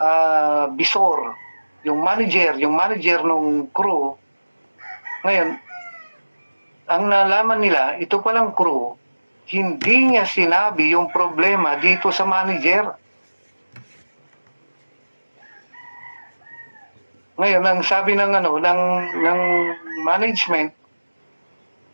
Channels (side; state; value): both; inverted; correlation -1.00